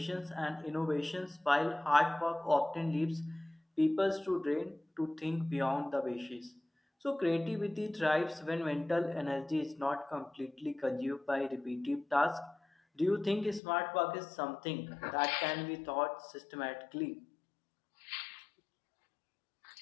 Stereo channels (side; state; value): right; drops out; at 13.6 s